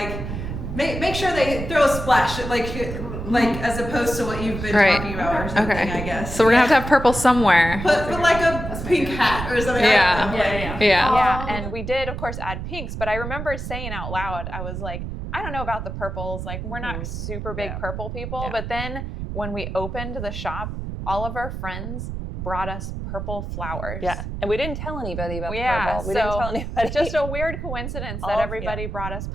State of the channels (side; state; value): right; noise; rumble, 6 dB below the sound